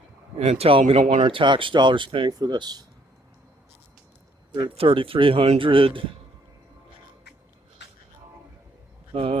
and tell them we don't want our tax dollars paying for this. They're at 3,300.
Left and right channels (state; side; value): normal; both; correlation 0.66